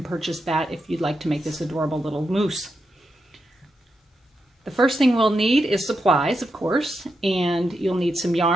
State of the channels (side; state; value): both; normal; correlation 0.85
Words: purchase that if you'd like to make this adorable little moose. The first thing we'll need is supplies, of course, and you'll need some